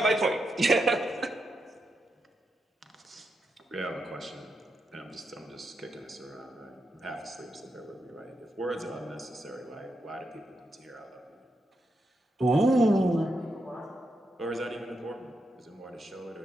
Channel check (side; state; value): both; normal; correlation 0.84